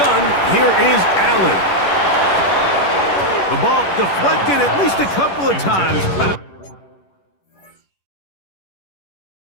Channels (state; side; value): late; right; 11 ms